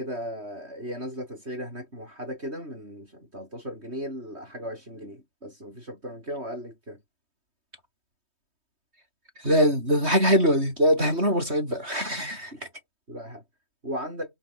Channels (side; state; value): left; late; 3.2 ms